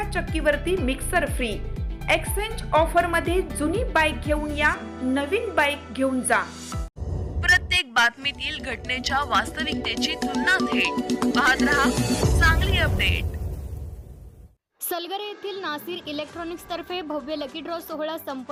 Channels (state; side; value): identical; both; correlation 1.00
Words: चक्कीवरती मिक्सर फ्री। एक्सचेंज ऑफर मध्ये जुनी बाईक घेऊन या, नवीन बाईक घेऊन जा। प्रत्येक बातमीतील घटनेच्या वास्तविकतेची तुलना थेट पाहत रहा चांगली अपडेट। सलगरे येथील नासिर इलेक्ट्रॉनिक्स तर्फे भव्य लकी ड्रॉ सोहळा